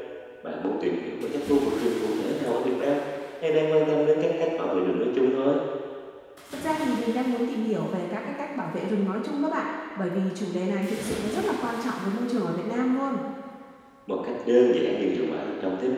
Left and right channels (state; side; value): identical; both; correlation 1.00